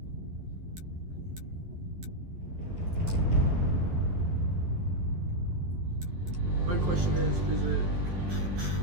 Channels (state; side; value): late; left; 11 ms